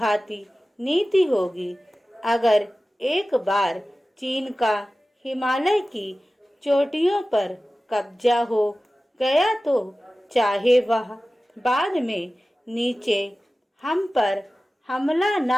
नीति होगी। अगर एक बार चीन का हिमालय की चोटियों पर कब्जा हो गया तो चाहे वह बाद में नीचे हम पर हमला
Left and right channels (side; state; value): both; normal; correlation 0.96